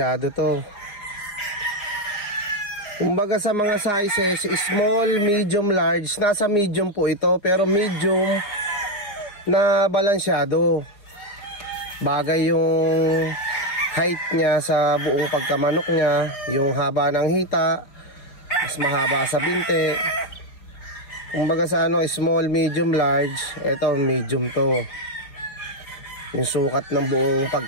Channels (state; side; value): late; right; 4.9 ms